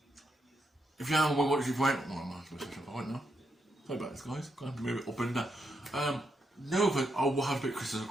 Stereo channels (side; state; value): both; normal; correlation 0.81